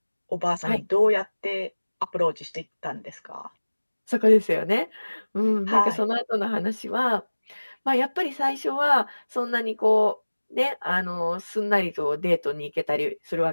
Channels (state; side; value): inverted; both; correlation -1.00